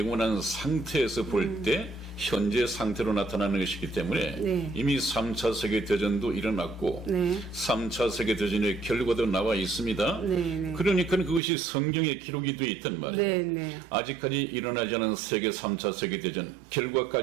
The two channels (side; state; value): left; drops out; at 11.4 s